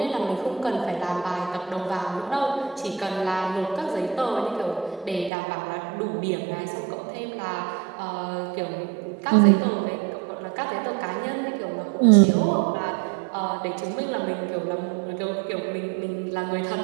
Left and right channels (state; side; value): drops out; left; at 5.3 s